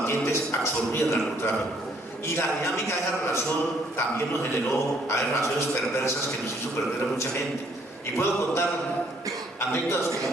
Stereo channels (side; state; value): both; normal; correlation 0.65